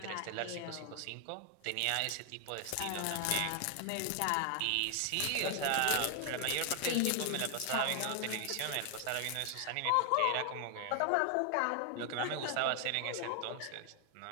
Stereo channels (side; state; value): both; different; correlation 0.00